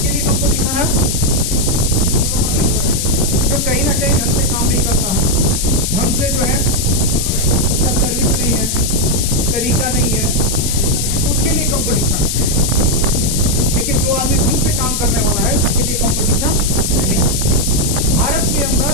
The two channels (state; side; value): noise; left; hiss, 2 dB below the sound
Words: लिए कंपटीशन है जो कहीं ना कहीं ढंग से काम नहीं करता है, ढंग से जो है उसका सर्विस नहीं है, तरीका नहीं है, उसके लिए कंपटीशन। लेकिन जो आदमी ढंग से काम करने वाला है उसके लिए कंपटीशन नहीं है। भारत के